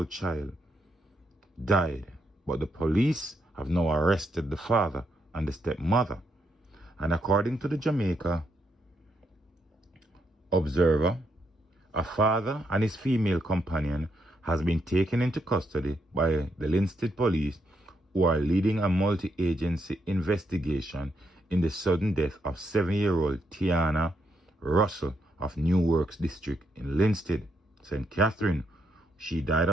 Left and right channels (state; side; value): normal; both; correlation 0.78